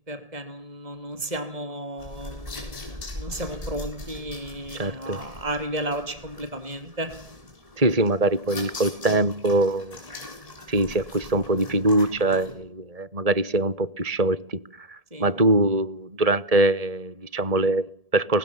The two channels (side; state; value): left; late; 1.7 ms